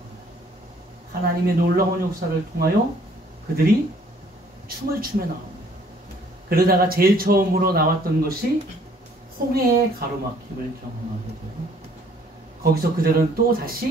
하나님의 놀라운 역사를 통하여 그들이 춤을 추며 나옵니다. 그러다가 제일 처음으로 나왔던 것이 홍해의 가로막힘을 경험하게 되고 거기서 그들은 또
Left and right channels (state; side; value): normal; both; correlation 0.60